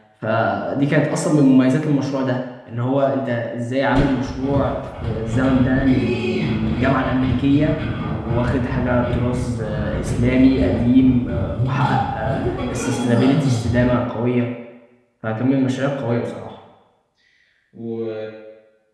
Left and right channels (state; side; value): identical; both; correlation 1.00